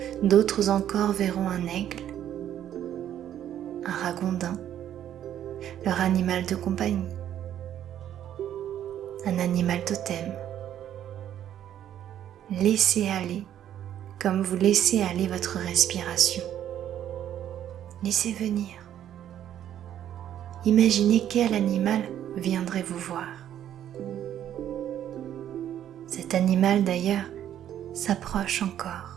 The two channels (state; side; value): quieter; left; 10.8 dB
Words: d'autres encore verront un aigle, un ragondin, leur animal de compagnie, un animal totem. Laissez aller comme vous laissez aller votre respiration. Laissez venir. Imaginez quel animal viendrait vous voir. Cet animal d'ailleurs s'approche